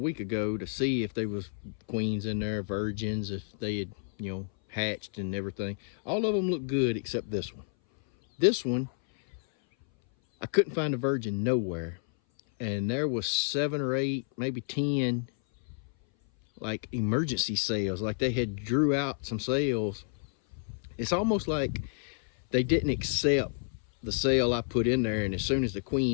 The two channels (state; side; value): silent; right; 57 dB below the other